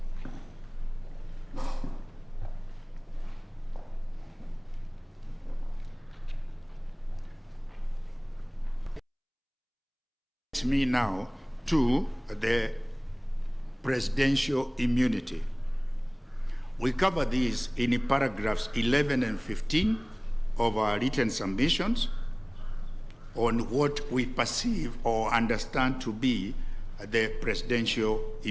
Me now to the presidential immunity. We cover these in paragraphs 11 and 15 of our written submissions on what we perceive or understand to be the presidential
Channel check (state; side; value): identical; both; correlation 1.00